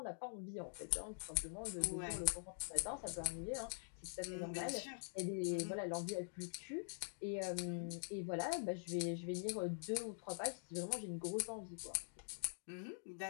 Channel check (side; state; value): right; silent; digital silence